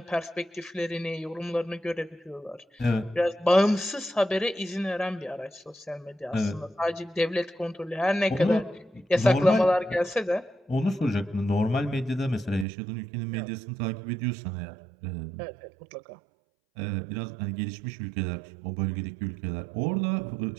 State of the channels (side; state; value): left; drops out; at 12.7 s